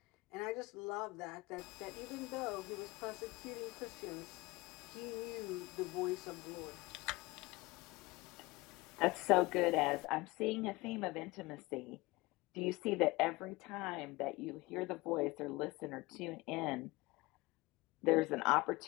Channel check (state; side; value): quieter; right; 22.2 dB